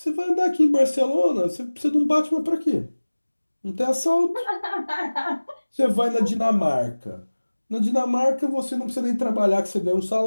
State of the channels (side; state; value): both; inverted; correlation -1.00